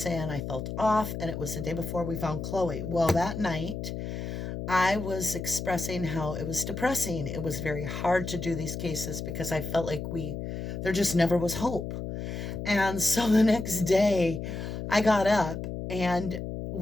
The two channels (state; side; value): noise; left; hum, 5 dB below the sound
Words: I felt off, and it was the day before we found Chloe. Well, that night, I was expressing how it was depressing. It was very hard to do these cases because I felt like there just never was hope. And so the next day I got up and